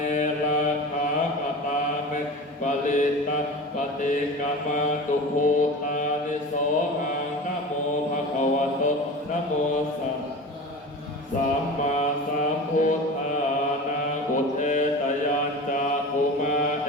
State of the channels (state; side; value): normal; both; correlation 0.33